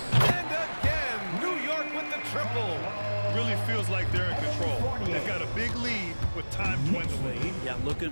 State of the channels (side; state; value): both; inverted; correlation -1.00